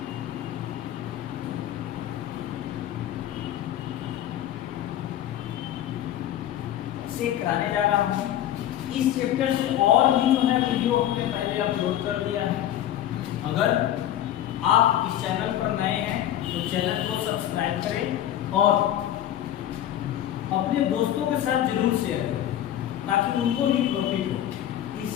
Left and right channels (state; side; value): quieter; right; 11.9 dB